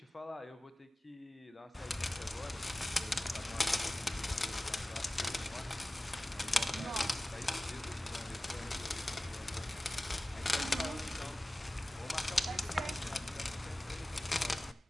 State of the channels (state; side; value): normal; both; correlation 0.97